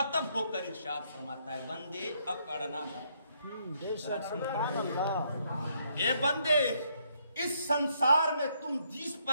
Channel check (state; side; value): inverted; both; correlation -0.72